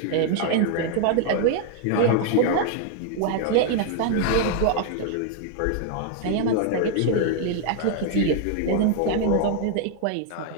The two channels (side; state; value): both; different; correlation 0.00